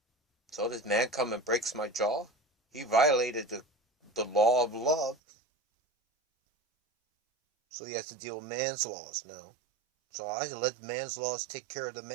So this man come and breaks my jaw? He violated the law of love. So he has to deal with man's laws now. So I let man's laws take care of the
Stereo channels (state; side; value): drops out; left; at 5.2 s